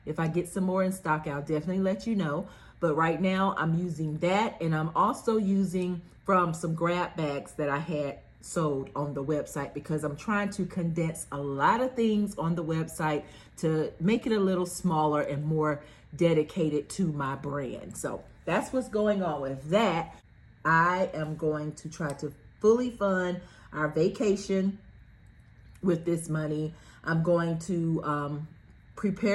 If I get some more in stock, I'll definitely let you know. But right now I'm using that, and I'm also using from some grab bags that I had sold on the website, because I'm trying to condense a lot of things on the website to make it a little smaller and more dedicated to my brand. So that's what's going on with that. I am going to try to fully fund our vacation with this money. I'm going to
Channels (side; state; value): both; identical; correlation 1.00